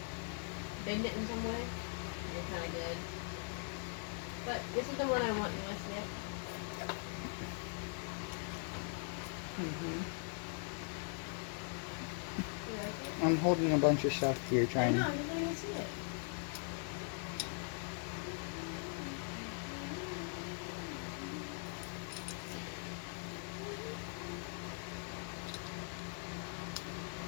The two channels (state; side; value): silent; right; 50 dB below the other